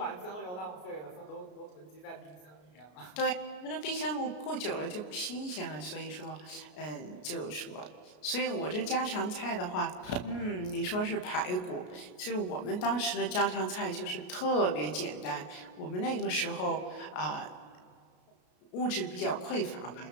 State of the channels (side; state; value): right; late; 33 ms